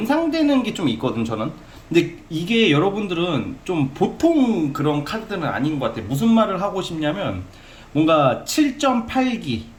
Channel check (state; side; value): identical; both; correlation 1.00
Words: 게 좀 있거든 저는. 근데 이게 여러분들은 좀 보통 그런 카드들은 아닌 것 같아요. 무슨 말을 하고 싶냐면 뭔가 7.8기